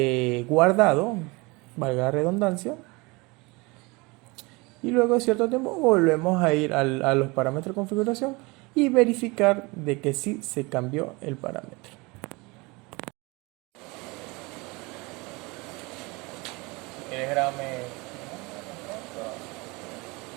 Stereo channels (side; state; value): left; quieter; 25.7 dB